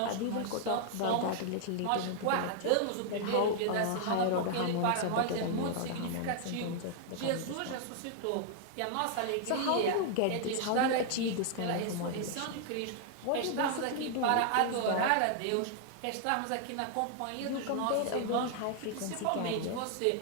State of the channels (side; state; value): both; different; correlation 0.00